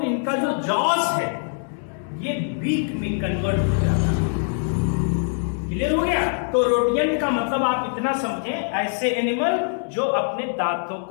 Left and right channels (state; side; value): silent; right; 63 dB below the other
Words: इनका जो जॉस है ये बीक में कन्वर्ट हो जाता है। क्लियर हो गया? तो रोडियंट का मतलब आप इतना समझें, ऐसे एनिमल जो अपने दांतों